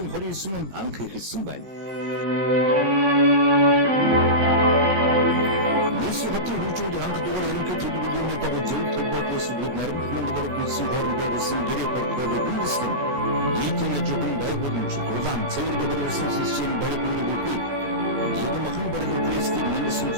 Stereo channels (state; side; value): late; left; 15 ms